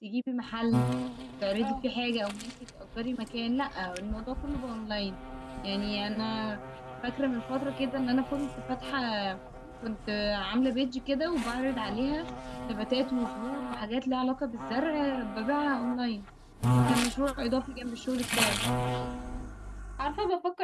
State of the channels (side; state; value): both; identical; correlation 1.00